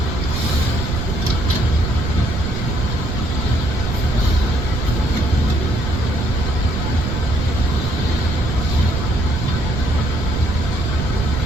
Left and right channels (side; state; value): right; noise; rumble, 3 dB below the sound